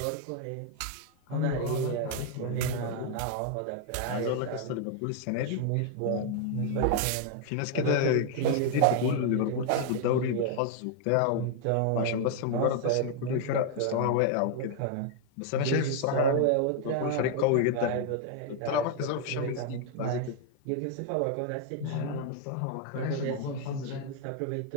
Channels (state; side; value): different; both; correlation 0.00